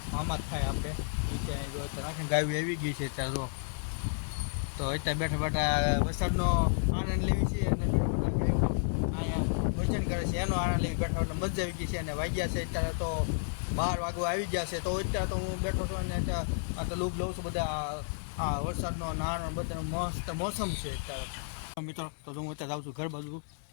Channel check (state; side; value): silent; right; 57 dB below the other